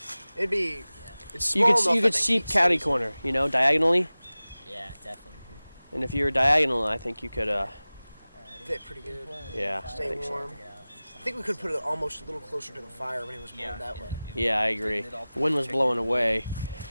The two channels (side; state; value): both; inverted; correlation -0.98